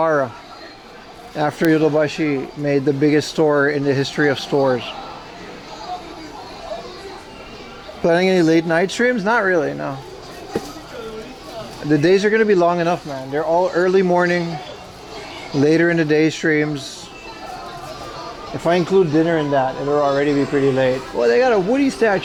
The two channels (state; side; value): identical; both; correlation 1.00